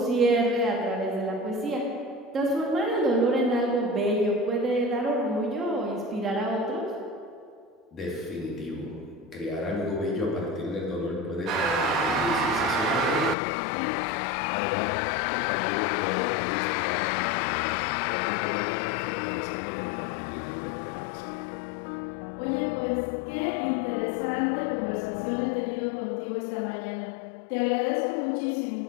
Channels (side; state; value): right; drops out; at 13.4 s